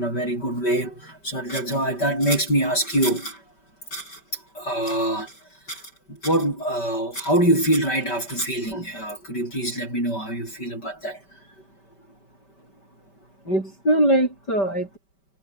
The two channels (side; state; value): right; late; 5.2 ms